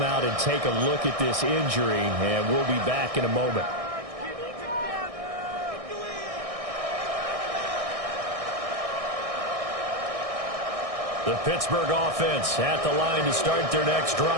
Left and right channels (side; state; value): left; late; 1.6 ms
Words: out and take a look at this injury, and we'll be back in a moment. The Pittsburgh offense at the line to start their next